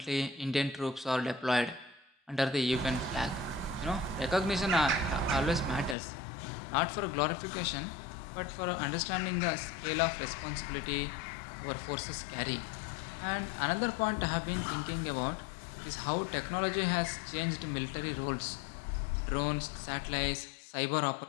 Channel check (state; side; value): drops out; right; at 6.0 s